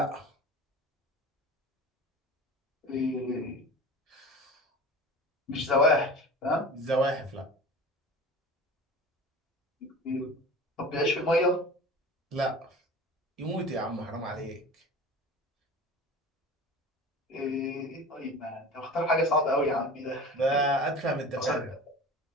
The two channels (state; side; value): normal; both; correlation 0.37